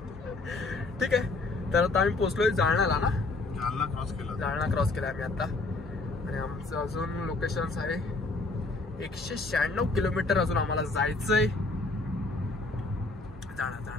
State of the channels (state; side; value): quieter; right; 3.3 dB